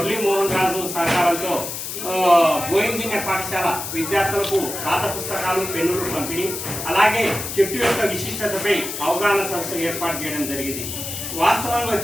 మోహన్ రాజు సహకారంతో గోయిందిన్య పాఠశాల విద్యార్థులకు పాత పుస్తకాలు పెన్నులు పంపిణీ, అలాగే చెట్టు యొక్క విశిష్టతపై అవగాహన సదస్సు ఏర్పాటు చేయడం జరిగింది। వాస్తవంగా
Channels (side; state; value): left; noise; hiss, 6 dB below the sound